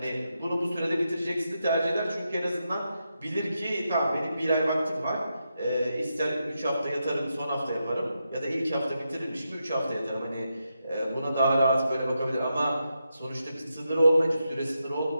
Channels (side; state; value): both; inverted; correlation -0.86